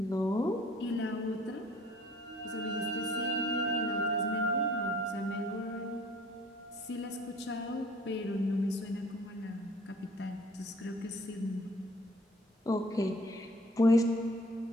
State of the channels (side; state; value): both; normal; correlation 0.53